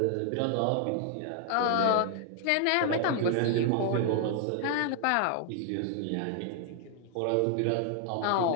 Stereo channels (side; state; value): both; different; correlation 0.00